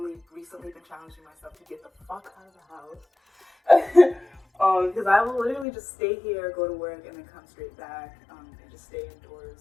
recently been challenging myself to get the fuck out of the house. Because I will literally just stay here, go to work, and then come straight back, and just stay indoors.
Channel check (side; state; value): right; drops out; at 5.7 s